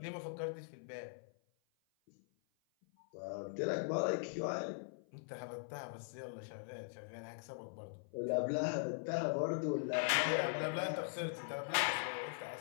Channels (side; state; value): right; silent; 50 dB below the other